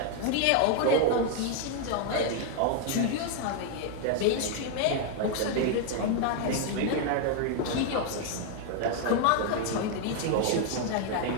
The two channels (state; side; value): different; both; correlation 0.00